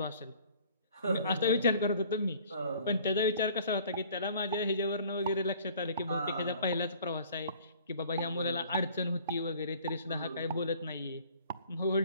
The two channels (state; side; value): inverted; both; correlation -0.53